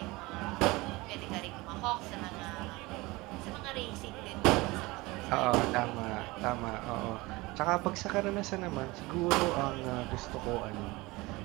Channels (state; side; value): quieter; left; 22.1 dB